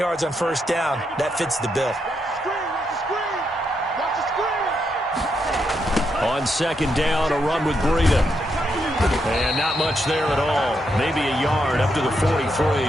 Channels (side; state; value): both; normal; correlation 0.80